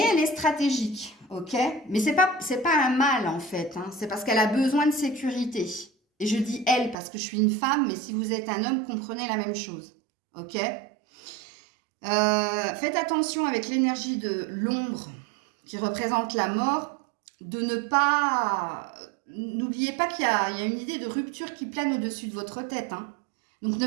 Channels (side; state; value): left; drops out; at 7.0 s